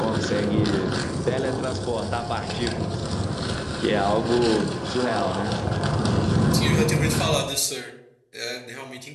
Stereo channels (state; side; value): identical; both; correlation 1.00